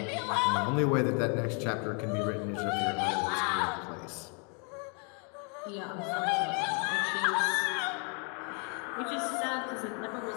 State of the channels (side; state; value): right; quieter; 37.5 dB